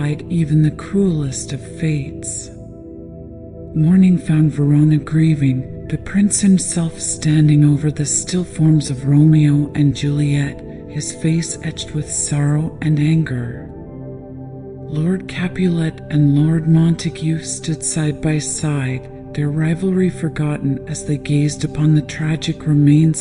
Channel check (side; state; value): both; identical; correlation 1.00